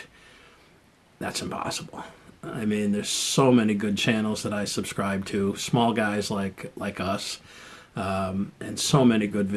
That's impossible. I mean, there's so many good channels that I subscribe to, small guys like us, and so many good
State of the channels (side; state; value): both; identical; correlation 1.00